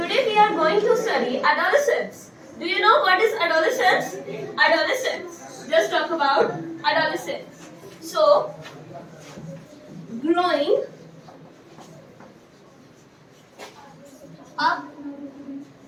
we are going to study adolescence. Do you know what is adolescence? Adolescence. Just talk about adolescence. So, growing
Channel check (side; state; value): both; identical; correlation 1.00